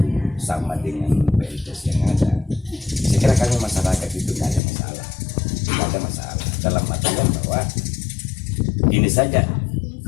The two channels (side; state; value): right; drops out; at 4.6 s